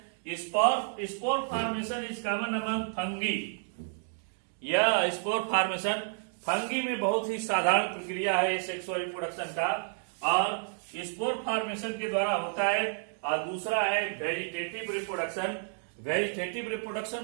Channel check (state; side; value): silent; left; digital silence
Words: Spore formation is common among fungi. यह स्पोर फॉर्मेशन फंगी में बहुत ही साधारण प्रक्रिया है सेक्सुअल रिप्रोडक्शन का, और स्पोर फॉर्मेशन के द्वारा होता है. और दूसरा है वेजिटेटिव रिप्रोडक्शन. वेजिटेटिव